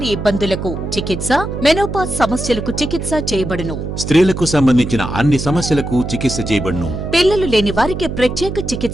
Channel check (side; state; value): right; noise; hum, 6 dB below the sound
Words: ఇబ్బందులకు చికిత్స, మెనోపాజ్ సమస్యలకు చికిత్స చేయబడును. స్త్రీలకు సంబంధించిన అన్ని సమస్యలకు చికిత్స చేయబడును. పిల్లలు లేని వారికి ప్రత్యేక